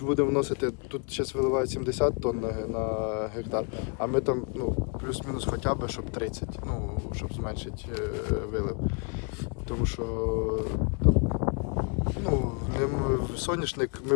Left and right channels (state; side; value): quieter; right; 36.0 dB